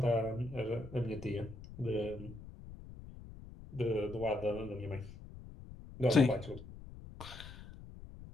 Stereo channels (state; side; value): noise; left; rumble, 14 dB below the sound